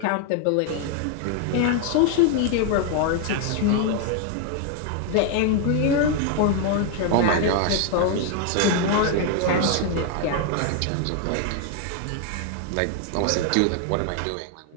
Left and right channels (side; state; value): both; different; correlation 0.00